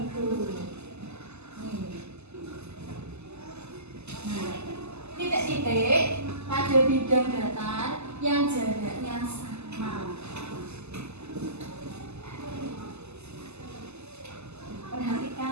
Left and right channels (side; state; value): left; late; 0.80 ms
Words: Nah, titik-titik pada bidang datar yang jaraknya sama.